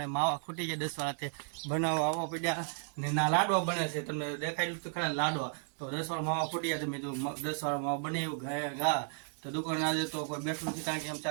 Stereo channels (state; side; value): silent; left; 55 dB below the other